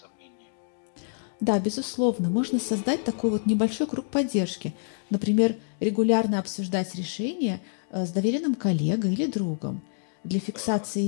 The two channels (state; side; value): silent; right; digital silence